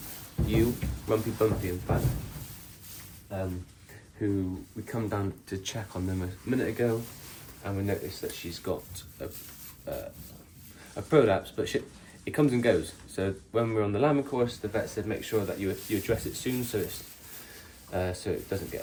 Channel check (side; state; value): both; identical; correlation 1.00